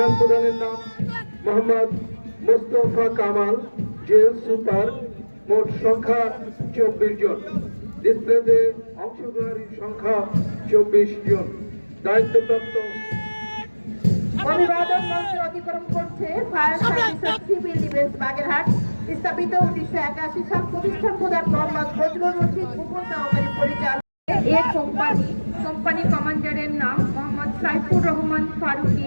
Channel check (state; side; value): inverted; both; correlation -1.00